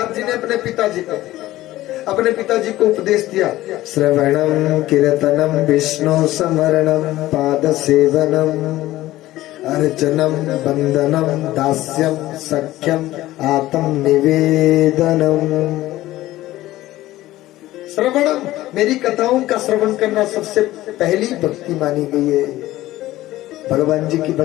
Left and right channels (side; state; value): right; quieter; 16.0 dB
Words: जी ने अपने पिताजी को उपदेश दिया, श्रवणम कीर्तनम विष्णु स्मरणम पाद सेवनम अर्चनम बंदनम दास्यम सख्यम आत्म निवेदनम। श्रवणम, मेरी कथाओं का श्रवण करना सबसे पहली भक्ति मानी गई है। भगवान जी की